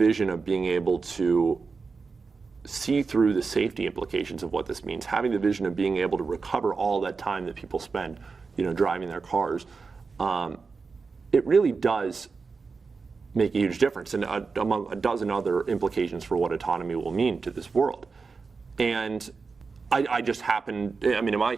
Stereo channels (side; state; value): left; quieter; 4.7 dB